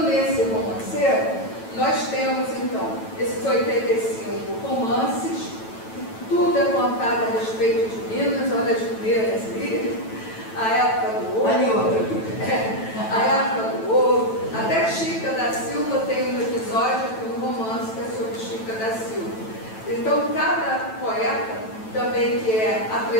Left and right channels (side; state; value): right; late; 9.1 ms